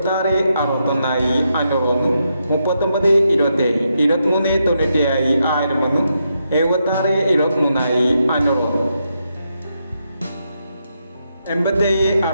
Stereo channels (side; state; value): both; inverted; correlation -0.82